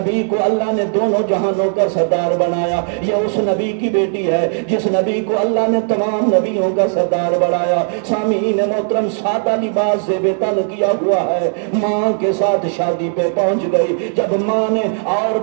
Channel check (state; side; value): silent; left; 59 dB below the other